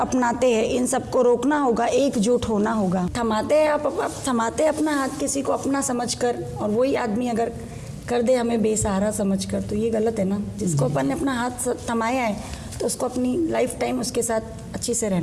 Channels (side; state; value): both; identical; correlation 1.00